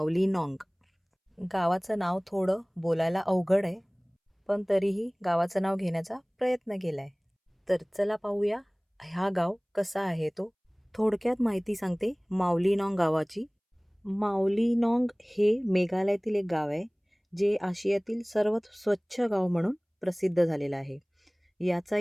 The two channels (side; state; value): both; identical; correlation 1.00